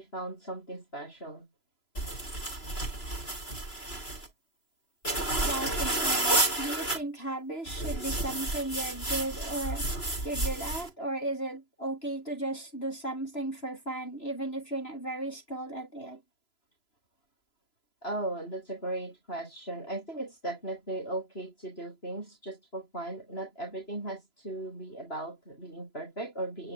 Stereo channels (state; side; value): late; right; 3.0 ms